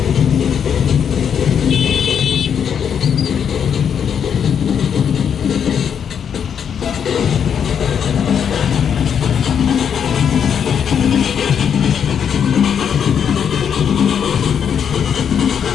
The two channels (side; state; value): right; quieter; 7.9 dB